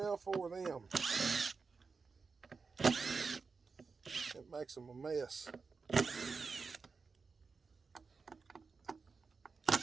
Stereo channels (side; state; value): left; quieter; 4.7 dB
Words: for them. It makes them a mess.